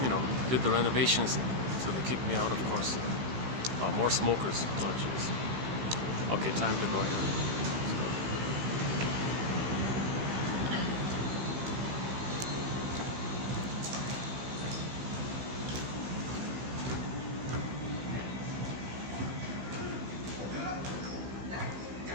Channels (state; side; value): late; left; 16 ms